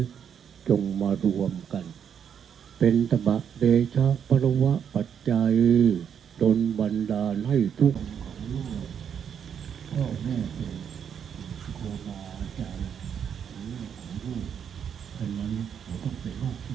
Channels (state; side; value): quieter; left; 8.0 dB